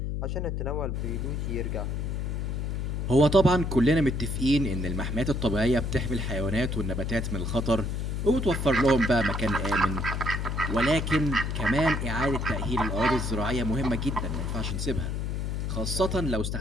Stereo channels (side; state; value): left; noise; hum, 2 dB below the sound